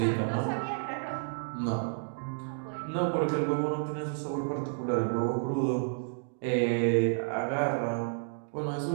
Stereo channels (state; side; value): silent; left; digital silence